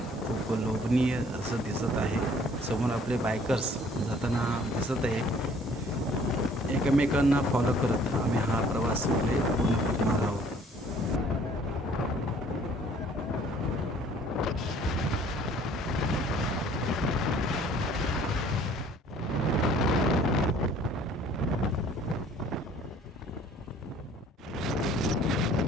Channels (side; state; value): both; normal; correlation 0.56